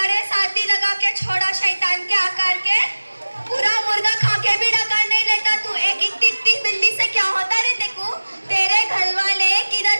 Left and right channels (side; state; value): both; inverted; correlation -1.00